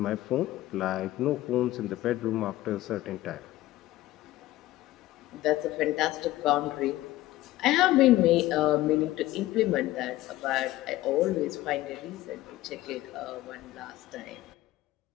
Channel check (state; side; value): quieter; right; 16.2 dB